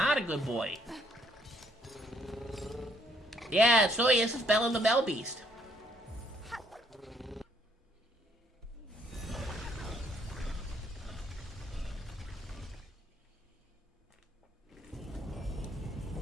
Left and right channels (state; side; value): normal; both; correlation 0.67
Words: a good boy. Yeah, so this is Bella the Bell Beast.